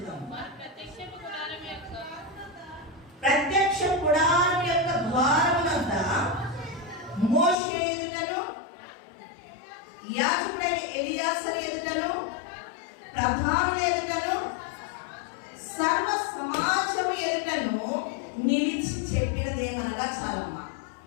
ప్రత్యక్ష గుడారం యొక్క ద్వారమునంత మోషే ఎదుటను, యాజకుడైన ఎలియాజరు ఎదుటను, ప్రధానుల ఎదుటను, సర్వ సమాజం ఎదుటను నిలిచి చెప్పినదేమనగా చాలమ్మా.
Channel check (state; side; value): drops out; right; at 7.6 s